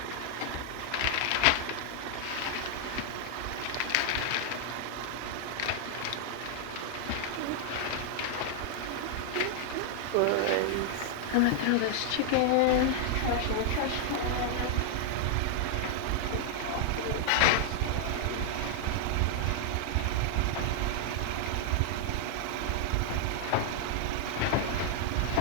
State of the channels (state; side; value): different; both; correlation 0.00